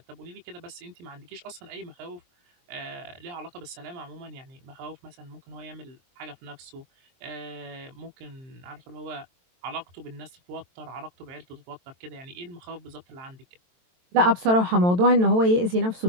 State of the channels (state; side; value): late; left; 22 ms